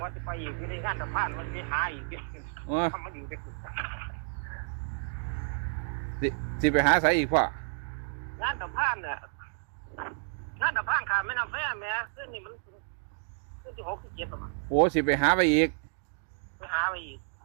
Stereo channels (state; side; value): silent; left; digital silence